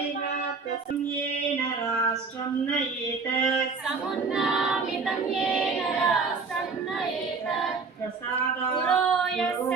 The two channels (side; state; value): left; quieter; 4.7 dB